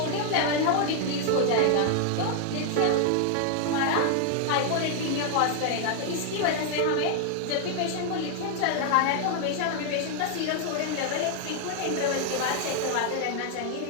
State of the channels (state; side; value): different; both; correlation 0.00